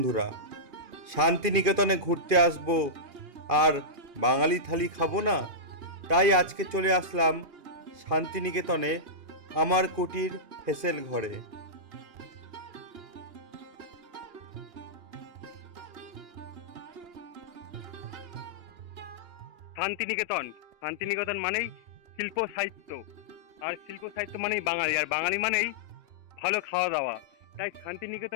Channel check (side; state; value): left; late; 2.5 ms